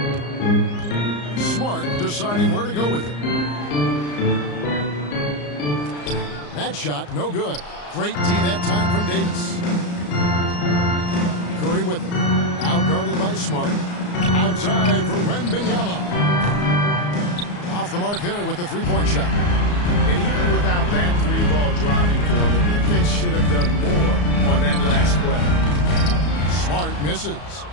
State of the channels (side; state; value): right; late; 34 ms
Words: Smart deciding where to go with it. That shot, no good. Great D that time from Davis. Curry with it. Out guarded by Smart. Outside for Wembanyama. Off the mark there with the three-point shot. And even without that three-ball dropping for him, the defense should have done more on that last play. Smart misses.